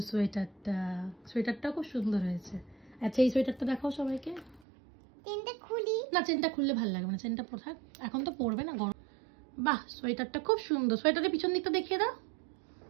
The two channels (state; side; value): drops out; left; at 4.6 s